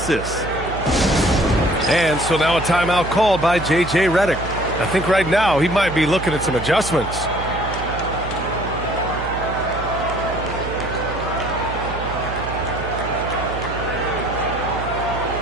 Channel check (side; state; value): right; noise; hum, 9 dB below the sound